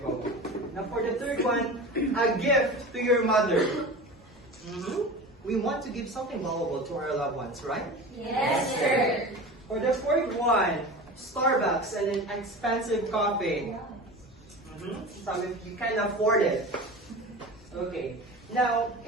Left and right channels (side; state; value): both; normal; correlation 0.32